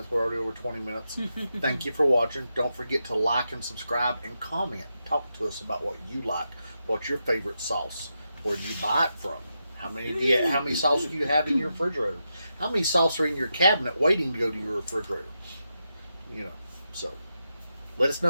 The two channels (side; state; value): both; inverted; correlation -0.86